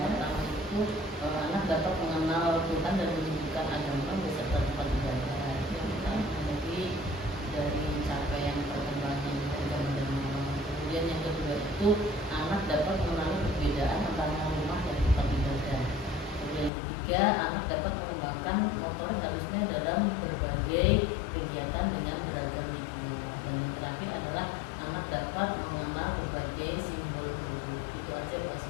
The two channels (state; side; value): drops out; right; at 16.7 s